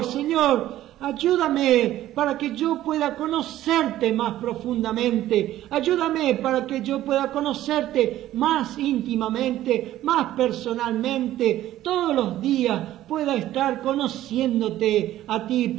Señor, ayúdame para que yo pueda conocerte más profundamente. Ayúdame para que yo pueda conocerte más íntimamente, más personalmente. Todos los días pueda estar conociéndote a ti,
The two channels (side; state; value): left; quieter; 13.8 dB